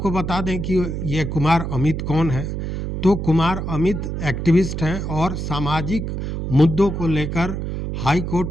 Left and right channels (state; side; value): noise; right; hum, 4 dB below the sound